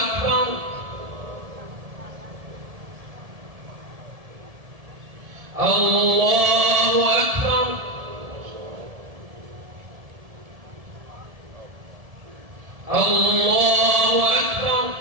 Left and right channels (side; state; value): left; late; 1.7 ms